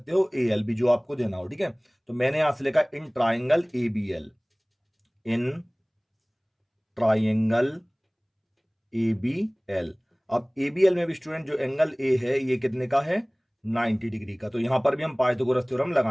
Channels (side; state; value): both; identical; correlation 1.00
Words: हो AL भी, जो आपको देना हो। ठीक है, तो मैंने यहां से लिखा in triangle ABL। In triangle ABL। अब ABL में भी स्टूडेंट जो एंगल A है ये कितने का है? 90 डिग्री का। तो यहां पर भी हम पाइथागोरस थ्योरम